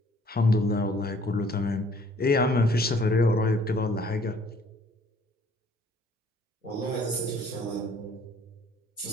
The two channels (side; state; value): both; normal; correlation 0.59